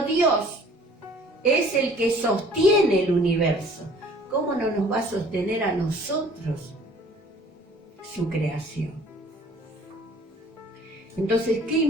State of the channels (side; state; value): both; normal; correlation 0.53